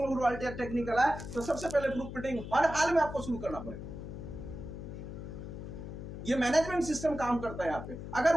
रॉयल्टी या टेक्निकल आए तो सबसे पहले ग्रुप मीटिंग हर हाल में आपको शुरू करना पड़ेगा। ये मैनेजमेंट सिस्टम काम करता है यहाँ पे। अगर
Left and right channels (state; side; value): noise; left; hum, 9 dB below the sound